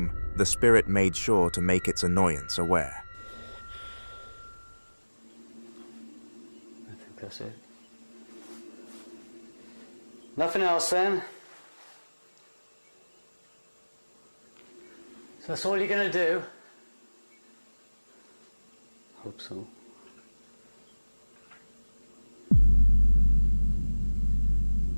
the spirit made sure to make its annoyance aware. I think that's it. Nothing else then? So that's all you're gonna do? Hope so.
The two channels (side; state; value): both; inverted; correlation -1.00